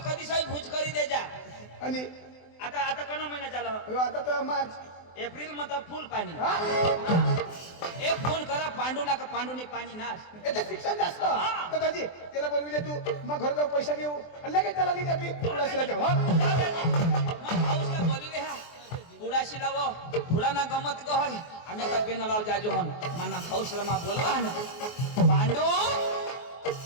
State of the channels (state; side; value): late; right; 24 ms